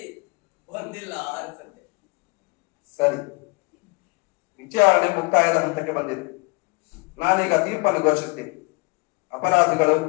ಬಂದಿಲ್ಲ ಅನ್ಸುತ್ತೆ. ಸರಿ, ವಿಚಾರಣೆ ಮುಕ್ತಾಯದ ಹಂತಕ್ಕೆ ಬಂದಿದೆ. ನಾನೀಗ ತೀರ್ಪನ್ನು ಘೋಷಿಸ್ತೀನಿ. ಅಪರಾಧಿಗಳು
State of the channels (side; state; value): right; quieter; 30.5 dB